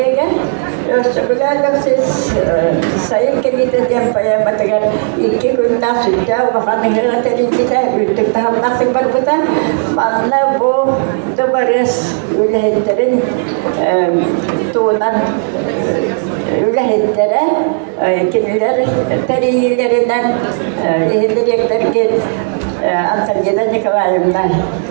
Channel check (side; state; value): left; silent; 61 dB below the other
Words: ösüklerle siz sayıp gelip yapmaya batırır iki günden sütte o hanımlara telifite ütük tam nasıl barbuta bana bu da varız ülhetlerin tuğunan ülhetlere kimiler teriyillerinden ihdirekler ki Antalya'da Nikolaev'den